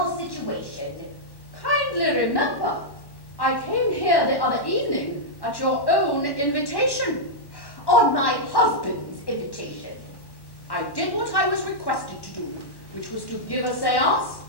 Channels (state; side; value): late; right; 1.1 ms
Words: situation. Kindly remember, I came here the other evening at your own invitation. On my husband's invitation. I did what I was requested to do, which was to give a seance